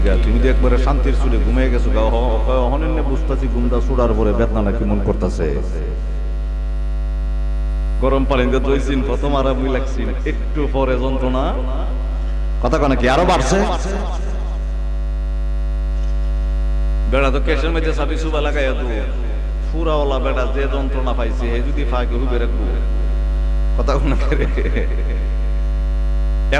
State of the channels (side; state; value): both; identical; correlation 1.00